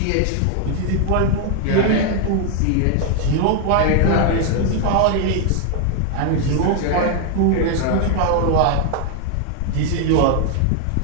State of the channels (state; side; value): different; both; correlation 0.00